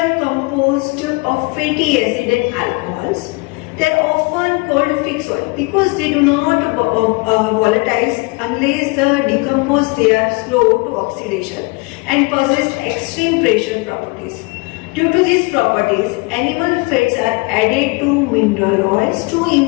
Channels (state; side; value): quieter; right; 27.1 dB